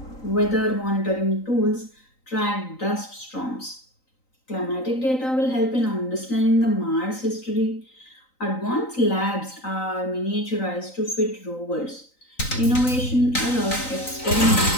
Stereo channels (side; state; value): right; late; 3.9 ms